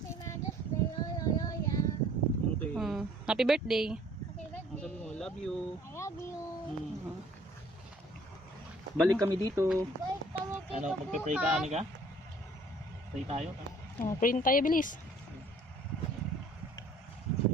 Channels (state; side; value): normal; both; correlation 0.55